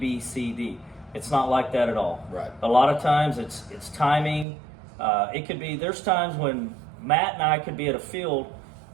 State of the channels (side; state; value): left; drops out; at 4.5 s